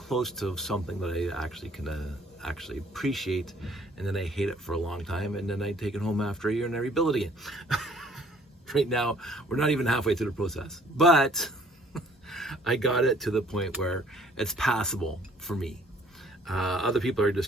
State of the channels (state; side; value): normal; both; correlation 0.58